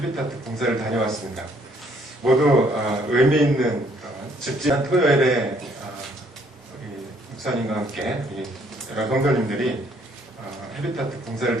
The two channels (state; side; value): normal; both; correlation 0.65